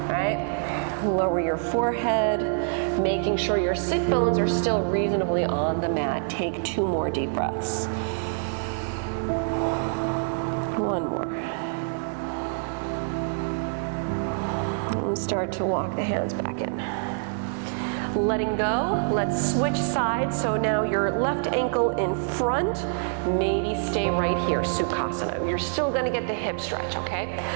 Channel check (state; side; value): silent; left; digital silence